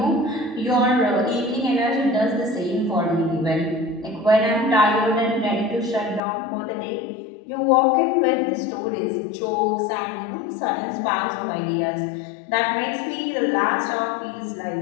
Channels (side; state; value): right; drops out; at 6.2 s